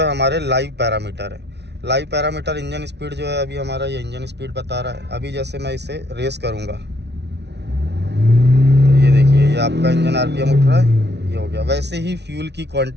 हमारे लाइव पैरामीटर है। लाइव पैरामीटर इंजन स्पीड जो है, अभी हमारा ये इंजन स्पीड बता रहा है। अभी जैसे मैं इसे रेस करूँगा तो ये देखिए, ये आपका इंजन आरपीएम उठ रहा है, ये हो गया। वैसे ही फ्यूल की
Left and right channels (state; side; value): late; left; 0.50 ms